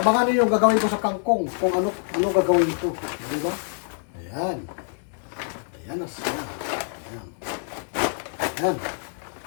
niyo yung gagawin ko sa kangkong. Kung ano gagawin ito. Di ba? Ayan. Ayan na siya. Ayan. Ayan.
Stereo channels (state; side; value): silent; right; 61 dB below the other